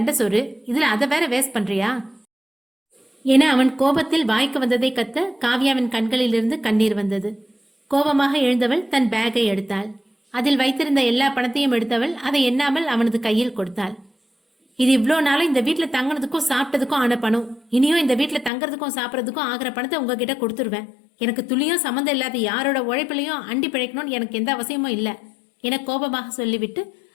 சோறு, இதுல அதை வேற வேஸ்ட் பண்றியா என அவன் கோபத்தில் வாய்க்கு வந்ததை கத்த காவ்யாவின் கண்களிலிருந்து கண்ணீர் வந்தது. கோபமாக எழுந்தவள் தன் பேக்கை எடுத்தாள். அதில் வைத்திருந்த எல்லா பணத்தையும் எடுத்தவள் அதை எண்ணாமல் அவனது கையில் கொடுத்தாள். இது இவ்வளோ நாளும் இந்த வீட்டில் தங்கினதுக்கும் சாப்பிட்டதுக்கும் ஆன பணம். இனியும் இந்த வீட்டில் தங்குறதுக்கும் சாப்பிட்றதுக்கும் ஆகிற பணத்தை உங்ககிட்ட கொடுத்துருவேன். எனக்கு துளியும் சம்மந்தம் இல்லாத யாரோட உழைப்பிலையும் அண்டி பிழைக்கணும்னு எனக்கு எந்த அவசியமும் இல்லை என கோபமாக சொல்லிவிட்டு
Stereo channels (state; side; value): drops out; right; at 18.5 s